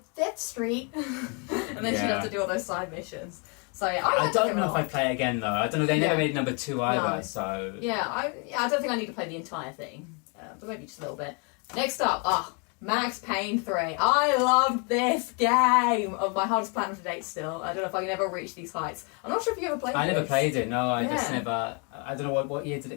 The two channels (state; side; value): quieter; right; 35.1 dB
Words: 5th Street, and then she'd have to do all those side missions. So yeah, I don't know if I'd play it again though. I don't know. They never made number 2 either. No. So I don't think I need to play the entire thing. But maybe just a little bit. Next up, Max Payne 3. I loved this game. My hardest platinum to date still. I don't know if I can ever reach these heights. I'm not sure if you ever played it. I never played it, no. I just never... I don't know, what year did